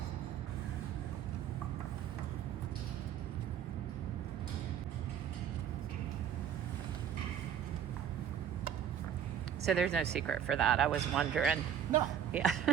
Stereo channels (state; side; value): quieter; left; 8.9 dB